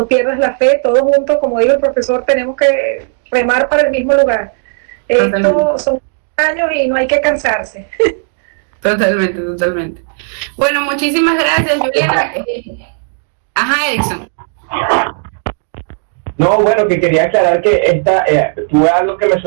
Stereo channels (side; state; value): left; silent; 71 dB below the other